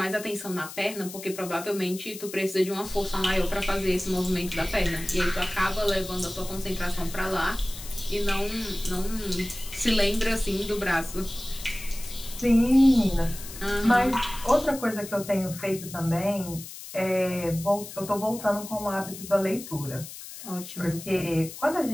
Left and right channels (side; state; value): left; noise; hiss, 13 dB below the sound